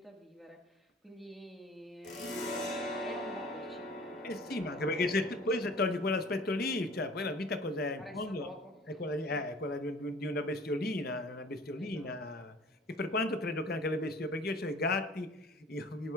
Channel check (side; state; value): both; normal; correlation 0.47